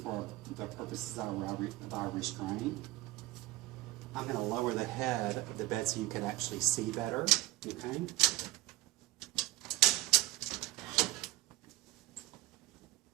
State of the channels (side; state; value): left; quieter; 17.3 dB